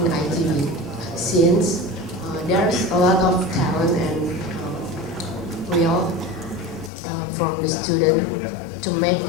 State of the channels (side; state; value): right; drops out; at 6.9 s